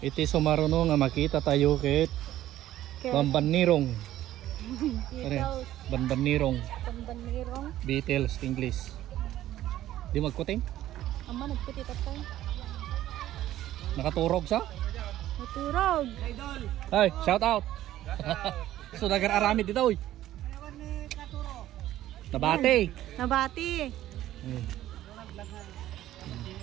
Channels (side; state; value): left; quieter; 13.6 dB